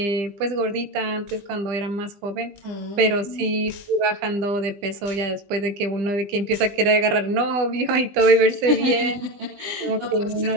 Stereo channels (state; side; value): late; left; 20 ms